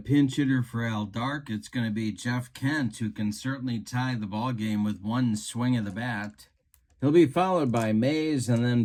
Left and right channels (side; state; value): both; identical; correlation 1.00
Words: hitter for Al Dark. It's going to be Jeff Kent, who can certainly tie the ball game with 1 swing of the bat. He'll be followed by Mays and